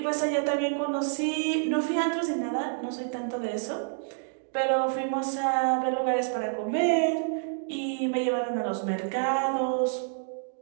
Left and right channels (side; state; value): left; silent; digital silence